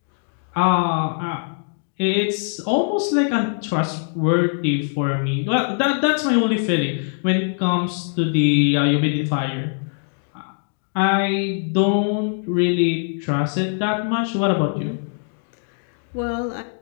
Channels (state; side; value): silent; right; 64 dB below the other